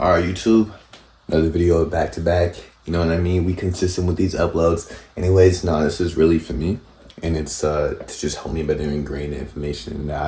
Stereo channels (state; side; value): identical; both; correlation 1.00